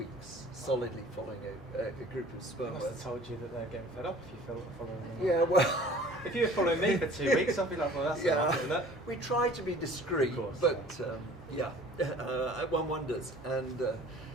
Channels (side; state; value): both; normal; correlation 0.48